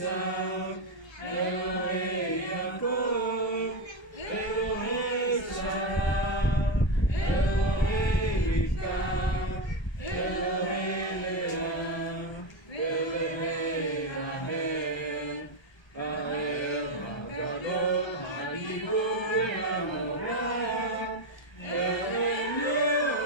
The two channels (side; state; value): right; late; 1.3 ms